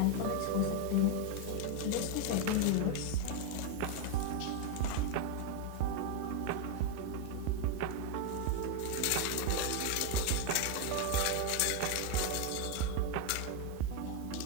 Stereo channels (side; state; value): both; different; correlation 0.01